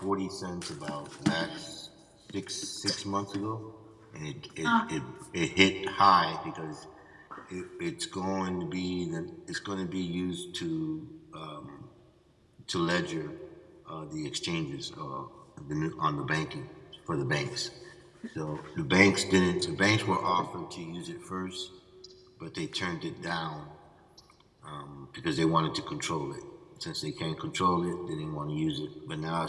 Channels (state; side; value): identical; both; correlation 1.00